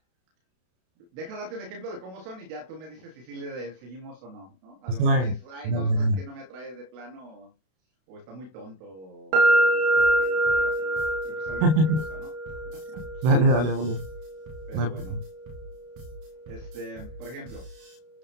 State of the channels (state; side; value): late; left; 32 ms